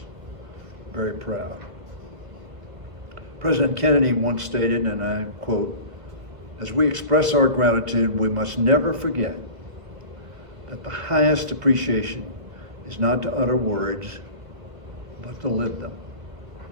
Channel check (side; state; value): left; late; 1.5 ms